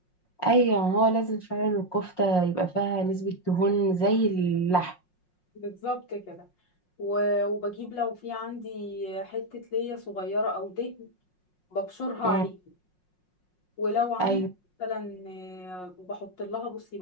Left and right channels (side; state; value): right; late; 5.5 ms